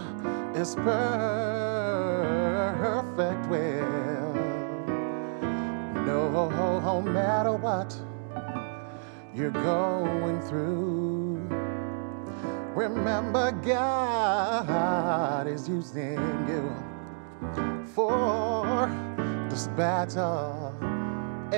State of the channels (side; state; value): left; silent; digital silence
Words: His perfect will. No matter what you're going through, remember God is using you, for this battle